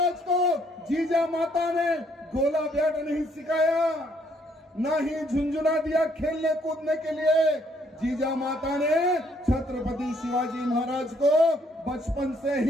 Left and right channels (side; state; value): both; normal; correlation 0.67